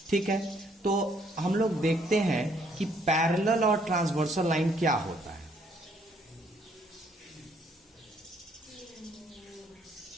ठीक है, तो हम लोग देखते हैं कि पैरेलल और ट्रांसवर्सल लाइन क्या होता है।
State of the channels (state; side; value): normal; both; correlation 0.67